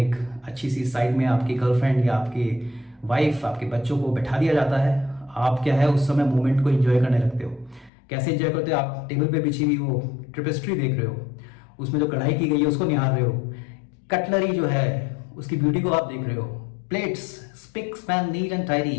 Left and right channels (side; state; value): right; drops out; at 7.9 s